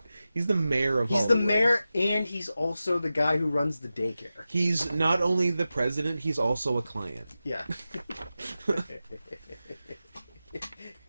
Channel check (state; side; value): inverted; both; correlation -0.93